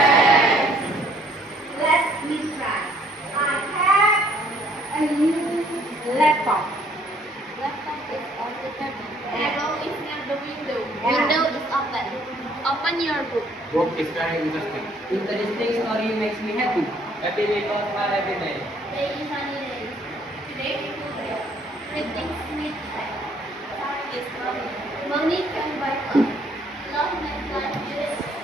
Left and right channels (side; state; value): both; normal; correlation 0.63